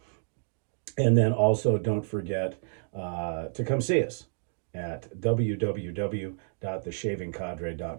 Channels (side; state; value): left; silent; digital silence